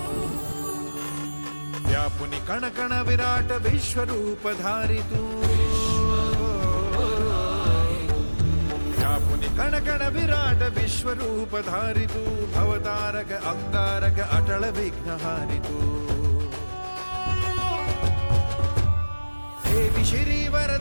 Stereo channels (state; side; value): inverted; both; correlation -1.00